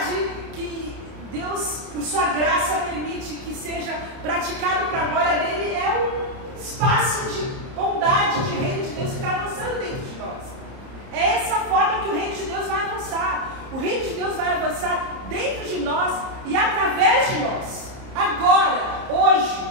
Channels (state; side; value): late; left; 30 ms